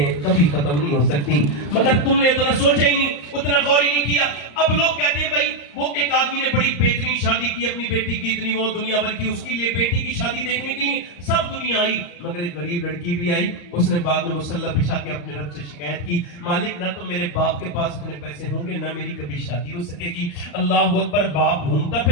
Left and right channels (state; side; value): late; right; 34 ms